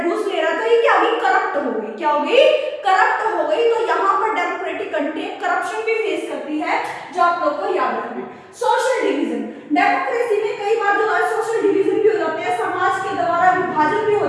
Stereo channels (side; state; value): both; identical; correlation 1.00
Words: घूस ले रहा है, तो ये क्या होगी, करप्ट हो गई, क्या होगी, करप्ट हो गई। तो यहाँ पर डेमोक्रेटिक कंट्री करप्शन भी फेस करती है, जो आप लोग को याद रखना है। सोशल डिवीजन, डेमोक्रेसी में कई बार जो है सोशल डिवीजन भी हो जाते हैं, समाज के द्वारा विभाजन भी हो